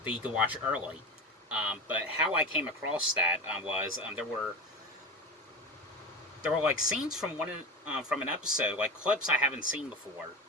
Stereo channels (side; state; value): both; normal; correlation 0.23